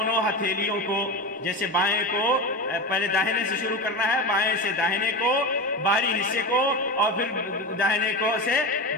ہتھیلیوں کو، جیسے بائیں کو پہلے داہنے سے شروع کرنا ہے، بائیں سے داہنے کو باہری حصے کو، اور پھر داہنے کو سے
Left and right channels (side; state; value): both; normal; correlation 0.22